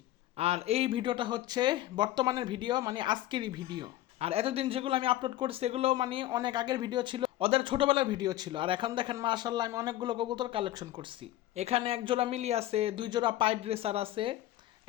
আর এই ভিডিওটা হচ্ছে বর্তমানের ভিডিও, মানে আজকেরই ভিডিও। আর এতদিন যেগুলো আমি আপলোড করছি এগুলো মানে অনেক আগের ভিডিও ছিল, ওদের ছোটবেলার ভিডিও ছিল। আর এখন দেখেন মাশাআল্লাহ, আমি অনেকগুলো কবুতর কালেকশন করছি। এখানে এক জোড়া মিলি আছে, দুই জোড়া পাইড রেসার আছে,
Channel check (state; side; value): quieter; right; 14.6 dB